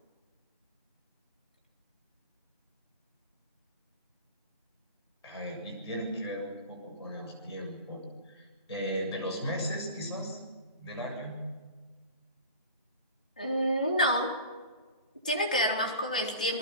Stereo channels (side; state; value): both; inverted; correlation -0.36